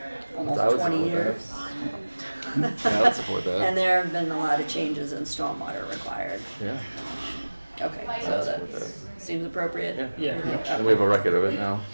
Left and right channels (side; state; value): both; inverted; correlation -1.00